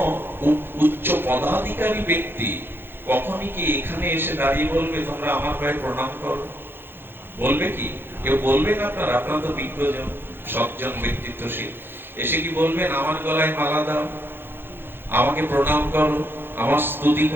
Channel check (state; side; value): late; left; 0.10 ms